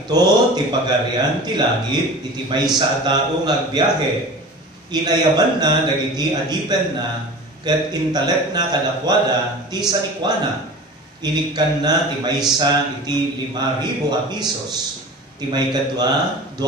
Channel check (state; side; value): normal; both; correlation 0.37